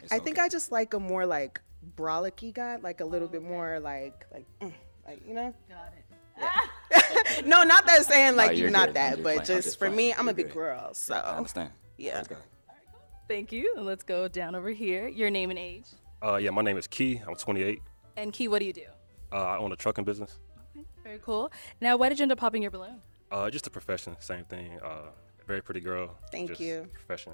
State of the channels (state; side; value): inverted; both; correlation -1.00